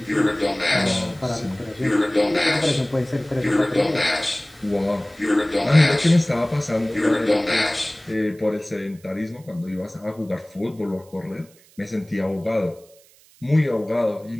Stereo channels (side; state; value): right; noise; hiss, 28 dB below the sound